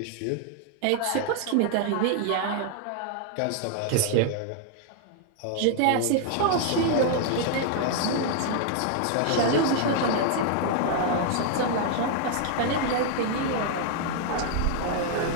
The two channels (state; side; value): different; both; correlation 0.00